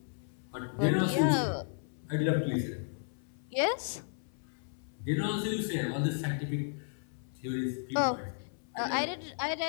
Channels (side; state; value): right; silent; 55 dB below the other